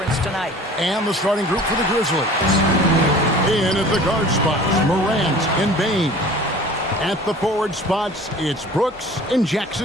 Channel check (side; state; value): both; normal; correlation 0.44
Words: tonight? And the starting group for the Grizzlies. In at the guard spots, Morant and Bane. At the forward spots, it's Brooks and